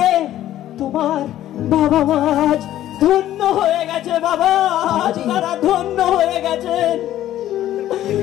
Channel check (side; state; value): right; quieter; 12.9 dB